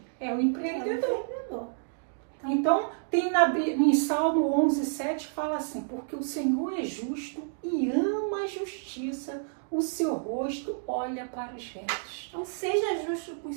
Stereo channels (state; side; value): silent; left; digital silence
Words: É o empreendedor. Então, tem em Salmo 11:7 fala assim, porque o Senhor é justo e ama a justiça, o seu rosto olha para os retos. Então, seja justo com os